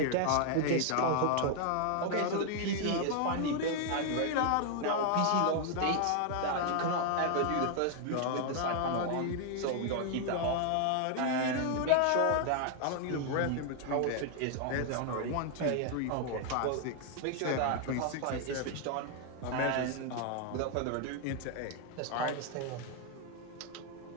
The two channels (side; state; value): both; different; correlation 0.00